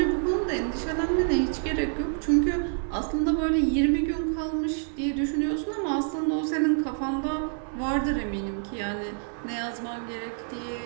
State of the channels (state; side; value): silent; left; 60 dB below the other